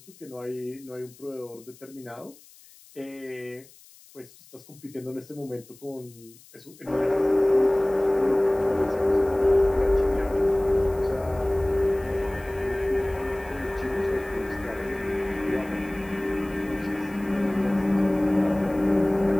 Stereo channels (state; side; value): noise; left; hiss, 24 dB below the sound